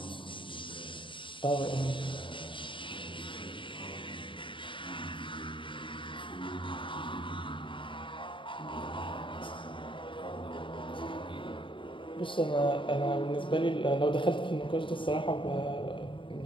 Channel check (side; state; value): right; late; 0.24 ms